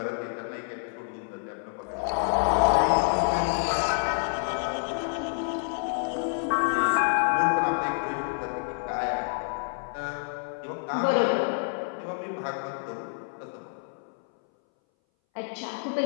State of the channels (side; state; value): right; silent; 59 dB below the other